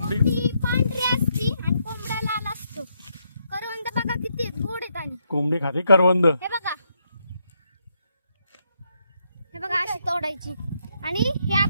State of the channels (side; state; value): both; inverted; correlation -0.77